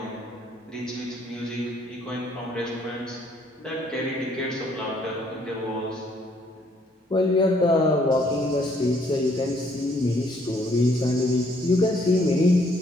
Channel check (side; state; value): both; normal; correlation 0.66